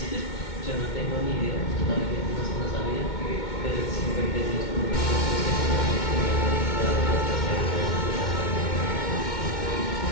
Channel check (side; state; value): right; late; 2.2 ms